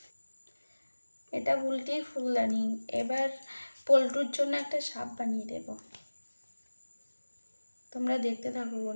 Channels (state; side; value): inverted; both; correlation -1.00